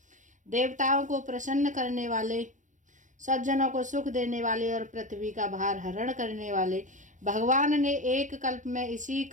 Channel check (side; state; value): left; late; 0.37 ms